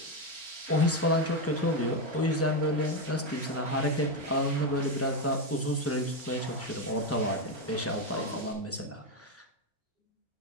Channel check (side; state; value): both; normal; correlation 0.08